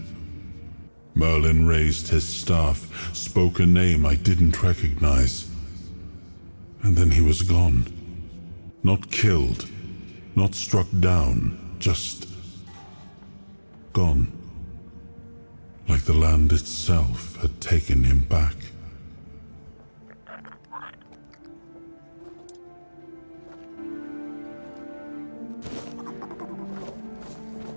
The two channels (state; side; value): inverted; both; correlation -1.00